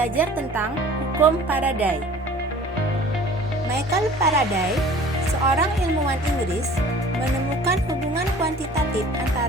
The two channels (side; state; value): both; normal; correlation 0.47